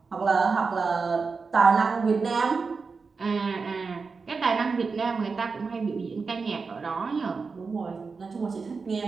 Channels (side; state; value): left; quieter; 4.7 dB